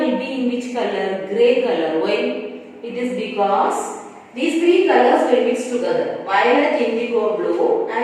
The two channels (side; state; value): both; identical; correlation 1.00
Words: be in which color? Grey color. Why? It is because these three colors will mix together. Violet, indigo, blue,